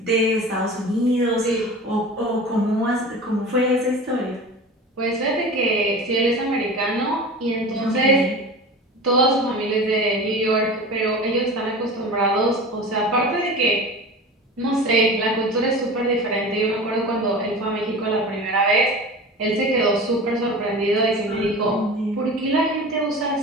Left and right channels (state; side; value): normal; both; correlation 0.34